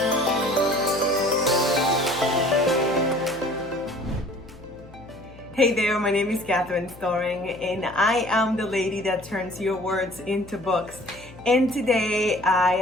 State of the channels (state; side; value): noise; left; hum, 21 dB below the sound